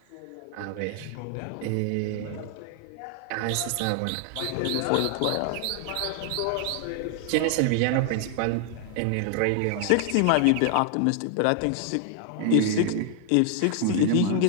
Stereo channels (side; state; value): both; different; correlation 0.00